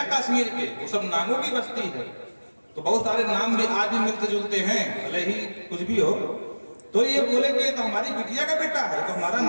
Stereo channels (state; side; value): inverted; both; correlation -1.00